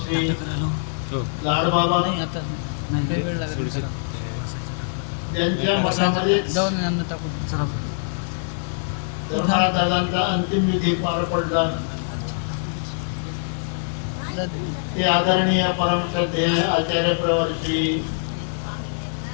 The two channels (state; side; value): silent; right; digital silence